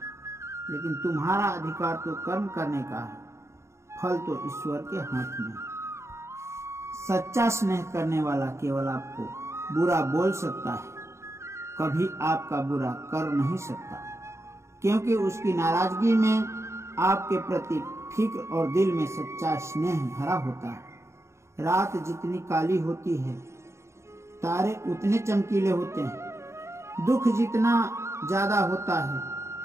लेकिन तुम्हारा अधिकार तो कर्म करने का है, फल तो ईश्वर के हाथ में। सच्चा स्नेह करने वाला केवल आपको बुरा बोल सकता है, कभी आपका बुरा कर नहीं सकता, क्योंकि उसकी नाराजगी में आपके प्रति फिक्र और दिल में सच्चा स्नेह भरा होता है। रात जितनी काली होती है, तारे उतने चमकीले होते हैं। दुख जितना ज्यादा होता है,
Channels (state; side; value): late; left; 0.13 ms